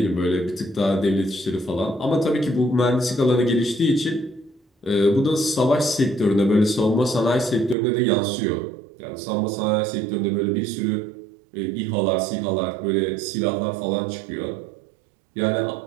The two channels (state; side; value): drops out; left; at 7.8 s